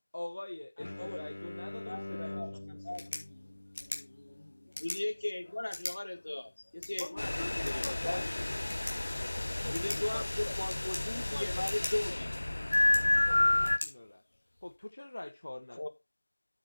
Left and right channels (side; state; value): both; inverted; correlation -1.00